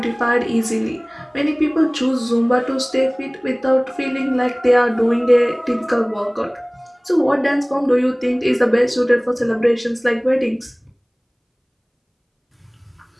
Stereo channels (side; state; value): both; identical; correlation 1.00